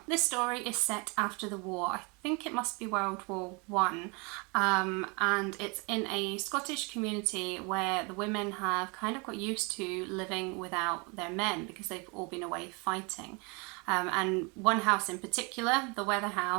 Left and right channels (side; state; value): left; quieter; 30.6 dB